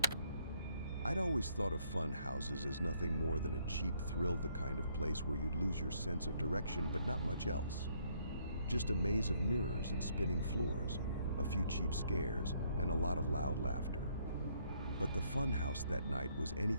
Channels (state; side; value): inverted; both; correlation -0.68